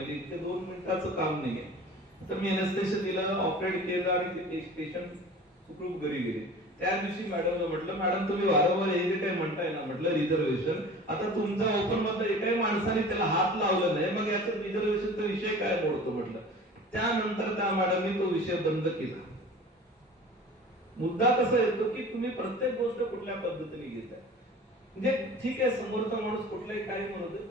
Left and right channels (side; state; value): both; normal; correlation 0.40